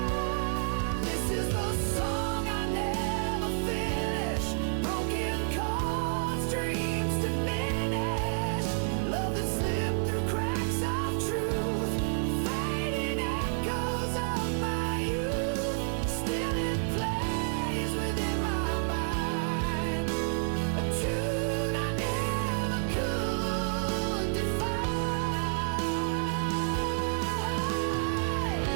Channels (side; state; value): left; silent; 57 dB below the other